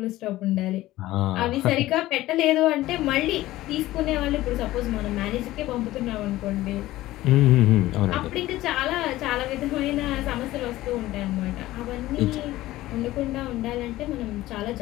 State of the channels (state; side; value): quieter; right; 16.4 dB